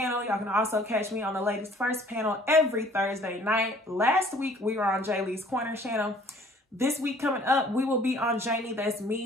Y'all can also catch me on the Ladies First panel every Thursday night. Last week, we were on Jay Lee's Corner channel. This week coming up, we will be on Jamie That's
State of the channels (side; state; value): both; normal; correlation 0.55